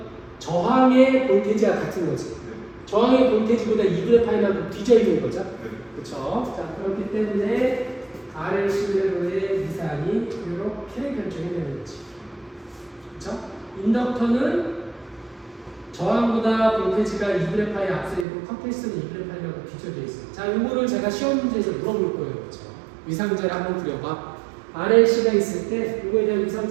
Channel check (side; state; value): left; drops out; at 18.2 s